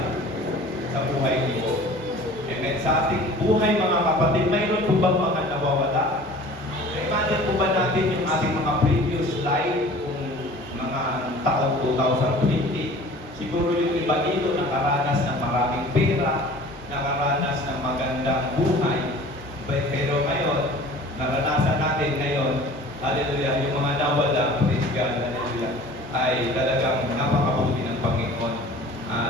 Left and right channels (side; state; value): both; normal; correlation 0.45